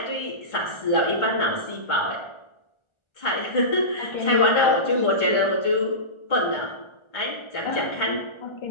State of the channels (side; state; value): right; late; 1.4 ms